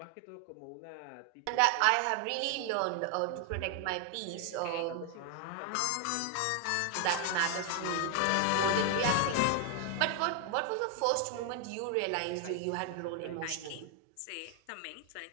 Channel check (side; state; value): both; different; correlation 0.00